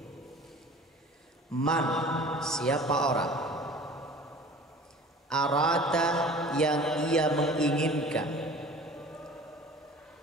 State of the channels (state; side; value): normal; both; correlation 0.43